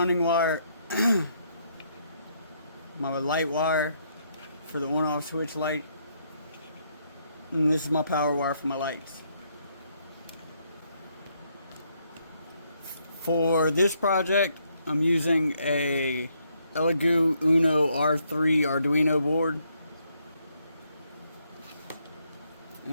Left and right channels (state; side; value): inverted; both; correlation -0.73